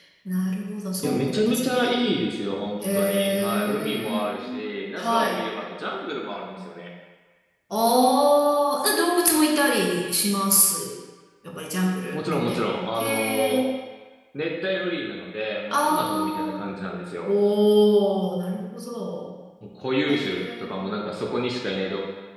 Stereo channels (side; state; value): both; identical; correlation 1.00